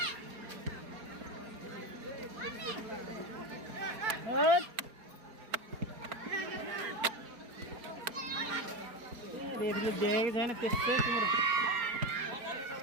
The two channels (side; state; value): left; late; 4.3 ms